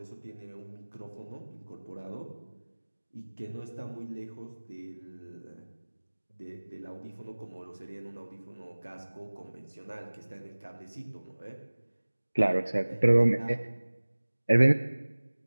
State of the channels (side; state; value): both; inverted; correlation -1.00